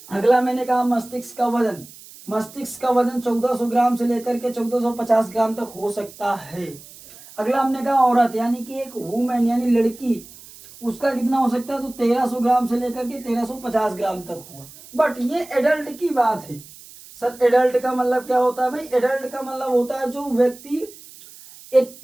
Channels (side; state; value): right; noise; hiss, 20 dB below the sound